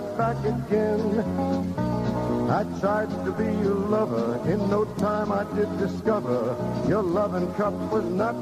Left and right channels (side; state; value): both; identical; correlation 1.00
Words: back again. I tried to be your lover. In no time I did discover your loving cup was not